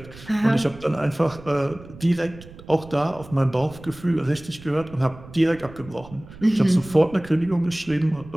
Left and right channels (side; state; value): right; noise; rumble, 18 dB below the sound